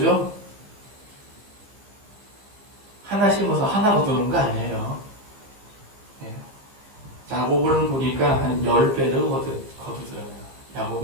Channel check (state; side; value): late; left; 15 ms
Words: 하나 심어서 하나 거두는 거 아니에요. 예. 야곱을 보니까 한 10배를 거두더라고요.